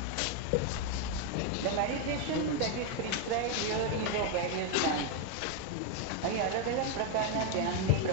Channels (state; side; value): different; both; correlation 0.01